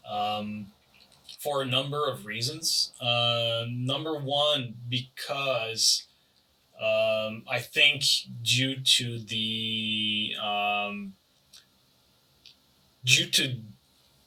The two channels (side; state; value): both; identical; correlation 1.00